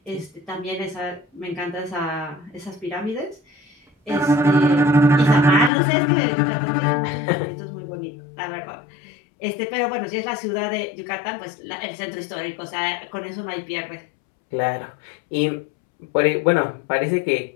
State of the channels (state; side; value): drops out; right; at 5.7 s